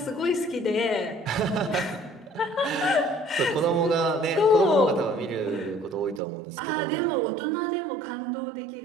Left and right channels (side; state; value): left; drops out; at 6.2 s